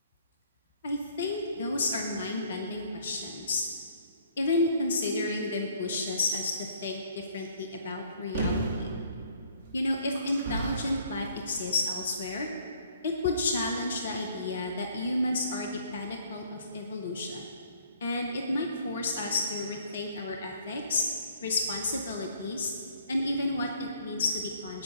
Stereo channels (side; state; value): both; inverted; correlation -0.59